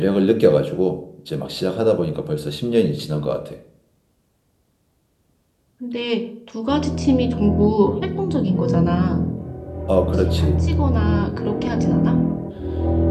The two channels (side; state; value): both; identical; correlation 1.00